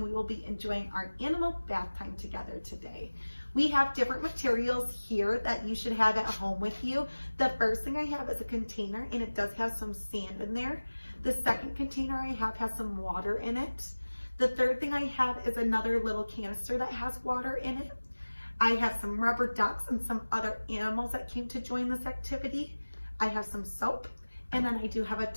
we will be enjoying our animal bath time together today. We have different materials here that you should have at home with you. The first thing I have is a container and it does have some sand in there. The second container I have has some water in it. The third thing I have is another little canister that has water in it. I have some rubber ducks and some other animals that came to join this activity. I have some soap. And then I do have a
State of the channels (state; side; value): inverted; both; correlation -1.00